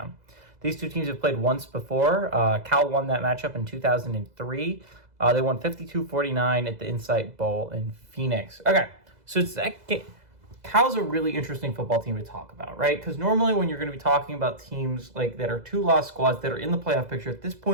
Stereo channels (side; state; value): left; late; 2.0 ms